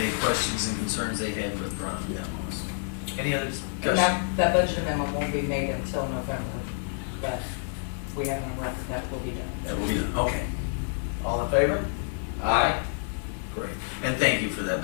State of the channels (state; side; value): silent; right; 59 dB below the other